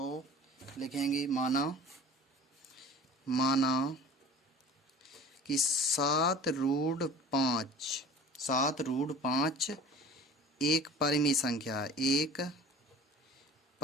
लिखेंगे माना कि 7√5 एक परिमेय संख्या, एक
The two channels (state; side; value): normal; both; correlation 0.43